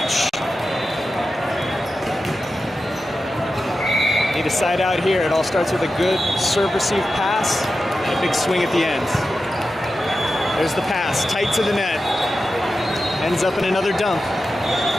Need a side out here. It all starts with a good serve-receive pass and a big swing at the end. There's the pass, tight to the net. Ends up in another dump.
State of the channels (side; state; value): both; normal; correlation 0.92